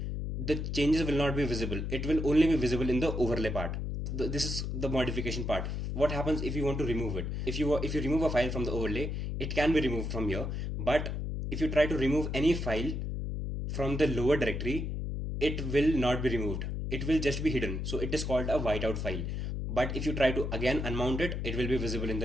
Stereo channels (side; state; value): left; noise; hum, 3 dB below the sound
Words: the changes will not be visible. It will only be visible in the overlay part. This is the modification part. What happens if you want to remove it? If you remove a file from the overlay, it can be removed from here. But if you try to remove any file from the lower directory, it will not be removed. It will just be hidden. So it is called a whiteout file. But if you try to again unmount it, it will be visible in